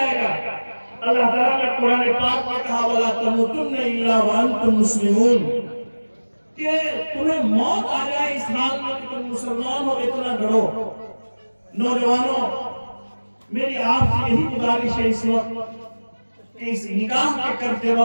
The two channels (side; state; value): both; inverted; correlation -1.00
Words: گا. اللہ تعالیٰ نے قرآن پاک میں کہا وَلَا تَمُوتُنَّ إِلَّا وَأَنْتُمْ مُسْلِمُونَ, کہ تمہیں موت آ جائے اس حال میں کہ تم مسلمان ہو, اتنا ڈرو. نوجوانوں, میری آپ سے یہی گزارش ہے اس وقت کہ اس نکاح کے کرتے